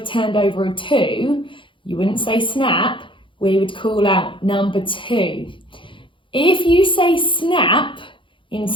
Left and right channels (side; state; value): right; late; 0.24 ms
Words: turned over a 2, you wouldn't say Snap, we would call out number 2. If you say Snap